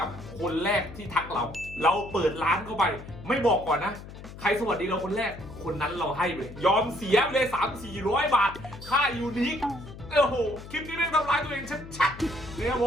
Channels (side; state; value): left; noise; hum, 14 dB below the sound